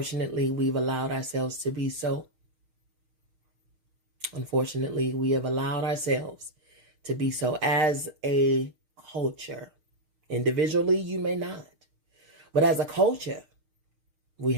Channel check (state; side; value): late; left; 6.5 ms